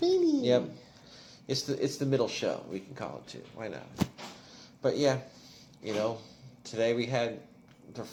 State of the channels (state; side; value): identical; both; correlation 1.00